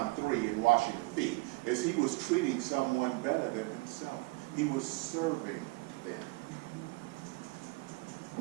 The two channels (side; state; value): left; quieter; 24.6 dB